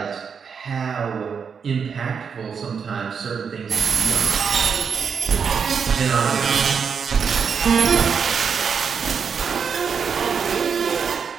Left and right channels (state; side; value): quieter; left; 6.4 dB